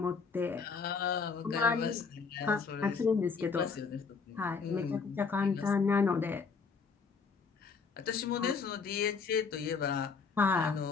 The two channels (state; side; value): quieter; right; 5.3 dB